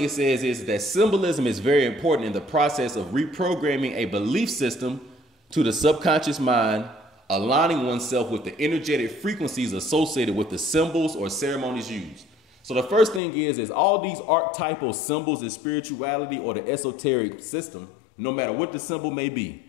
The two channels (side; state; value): right; drops out; at 13.2 s